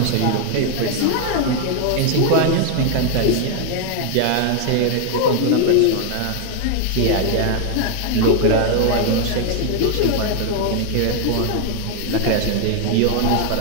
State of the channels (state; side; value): different; both; correlation 0.00